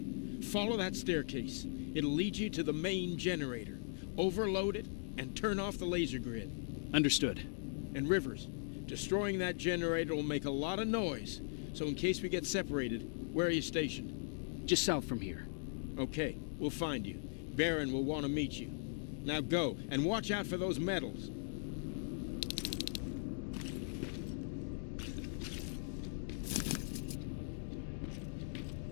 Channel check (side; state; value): right; silent; digital silence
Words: Follow that staircase. It'll lead you to the main generator. Overload it and turn off the laser grid. Understood. And Rivers, destroying that generator will make a lot of noise. So in case we get separated, where are you stationed? Just south from here. Okay, we'll find you. Barron will want to meet you. Now go, and watch out for those medals.